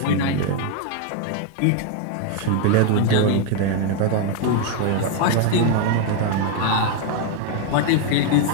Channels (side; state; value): both; different; correlation 0.01